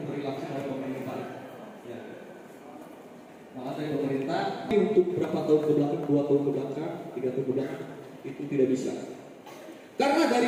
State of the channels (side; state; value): both; identical; correlation 1.00